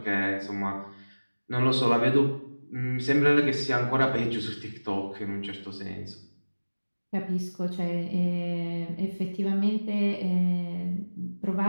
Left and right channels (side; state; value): both; inverted; correlation -1.00